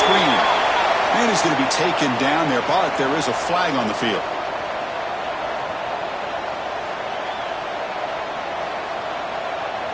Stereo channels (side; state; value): both; identical; correlation 1.00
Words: Man is going to be taken down there, but there is a flag on the field.